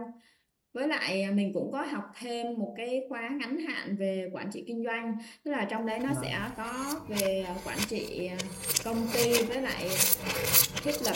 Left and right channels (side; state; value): both; identical; correlation 1.00